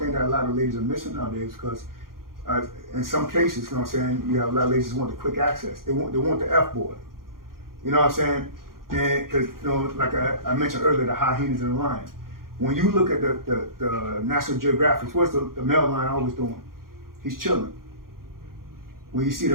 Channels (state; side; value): late; left; 0.92 ms